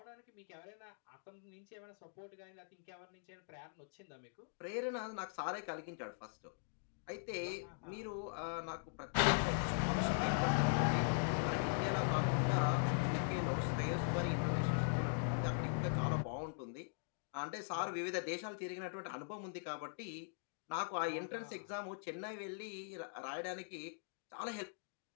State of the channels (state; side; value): silent; right; digital silence